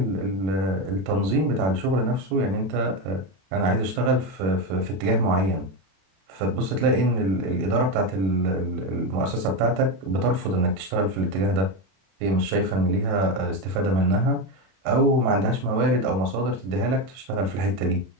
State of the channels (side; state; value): left; late; 32 ms